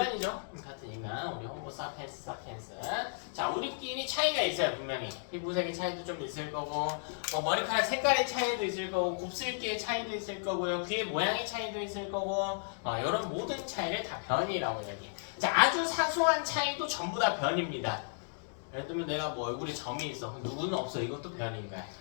같은 인간, 우리 호모 사피엔스. 자, 우리끼리 차이가 있어요, 분명히. 피부색의 차이도 좀 있을 거고, 뭐 머리카락 색깔의 차이도 있을 거고, 곱슬기의 차이도 있을 거고요, 귀의 모양의 차이도 있을 거고, 이런 모든 차이를 다 변이라고 이야기해요. 자, 아주 사소한 차이도 전부 다 변입니다. 예를 들면 내가 뭐 얼굴에 점이 있어. 누구는 없어. 이것도 변인 거야.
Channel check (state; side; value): silent; right; digital silence